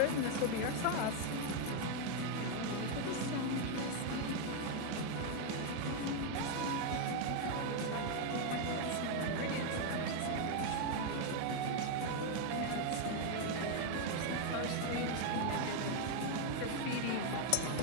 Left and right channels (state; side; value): different; both; correlation 0.01